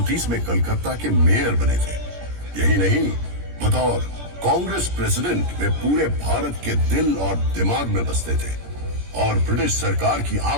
में कलकत्ता के मेयर बने थे। यही नहीं, बतौर कांग्रेस प्रेसिडेंट वे पूरे भारत के दिल और दिमाग में बसते थे और ब्रिटिश सरकार की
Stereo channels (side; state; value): left; late; 17 ms